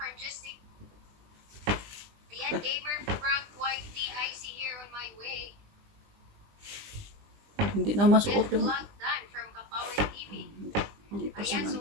Justic. Ayan, gamer Frank YT, I see here on my way. Hindi na masuot yung... Vlog done from Kapawi TV. Hindi pa siya Ayan, so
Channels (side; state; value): left; late; 20 ms